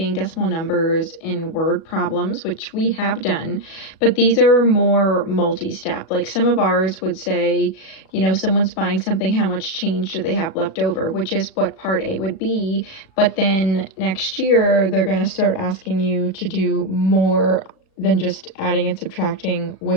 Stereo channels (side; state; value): right; late; 37 ms